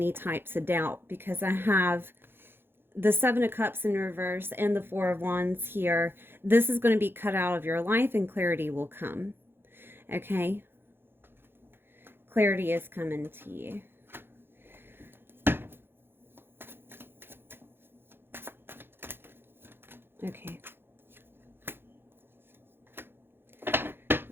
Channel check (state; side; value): late; left; 0.10 ms